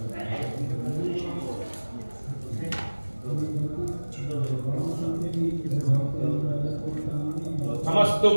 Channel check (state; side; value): inverted; both; correlation -1.00